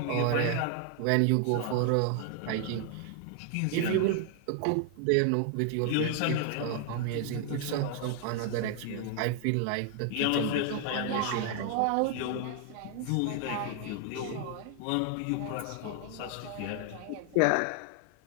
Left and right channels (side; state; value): both; different; correlation 0.00